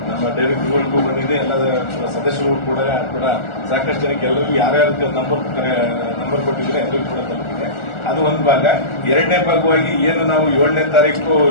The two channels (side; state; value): right; late; 1.4 ms